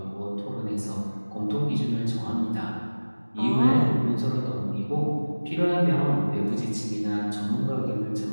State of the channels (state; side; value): inverted; both; correlation -1.00